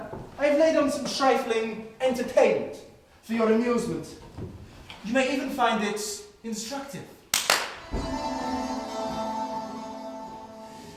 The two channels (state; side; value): identical; both; correlation 1.00